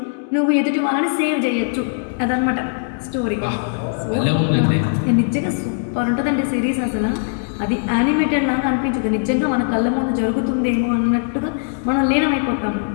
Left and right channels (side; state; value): right; silent; 66 dB below the other